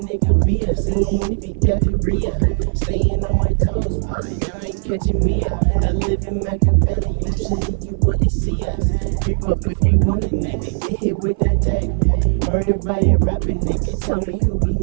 Bia, seeing if he got the Rhea. Staying on my toes, boy, y'all ain't catching me up. I live in Machiavelli, usually you wouldn't see us. Creep up if you want a nigga, get hit with that tag. Murdered by a rapping nigga, tell me who be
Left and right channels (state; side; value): silent; left; 57 dB below the other